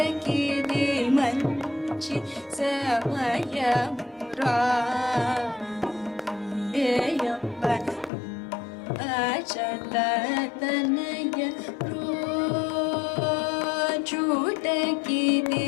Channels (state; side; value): drops out; right; at 8.1 s